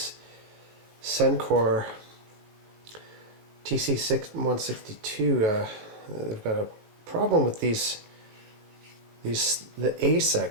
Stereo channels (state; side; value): late; left; 19 ms